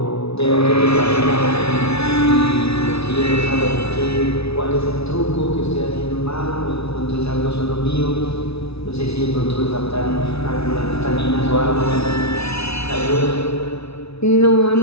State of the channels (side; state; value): right; late; 0.79 ms